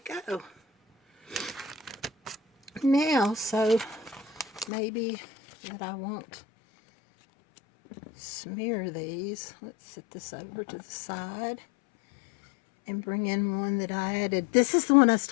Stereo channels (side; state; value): right; drops out; at 4.7 s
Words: Now, so maybe that I won't smear these. Let's set this over to the side and bring in one that I added. This is the one I was